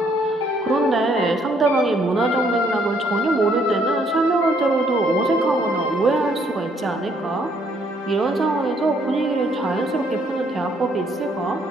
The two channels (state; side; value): normal; both; correlation 0.68